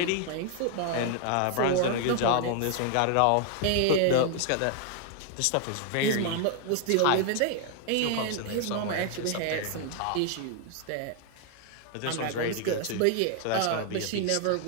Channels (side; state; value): both; different; correlation 0.00